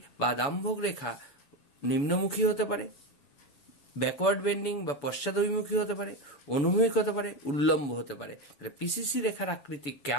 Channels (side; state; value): right; late; 7.0 ms